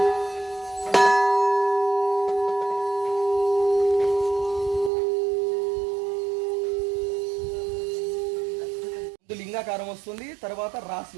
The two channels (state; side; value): drops out; left; at 4.9 s